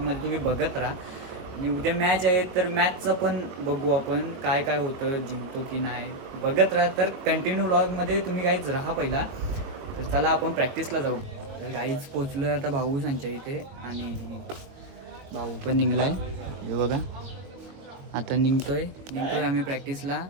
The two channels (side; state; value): left; late; 22 ms